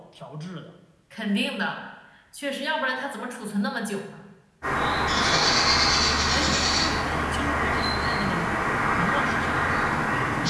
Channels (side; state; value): both; identical; correlation 1.00